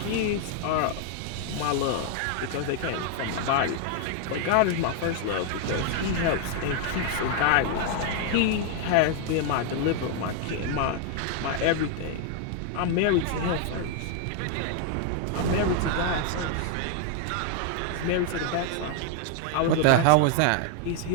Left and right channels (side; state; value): both; different; correlation 0.00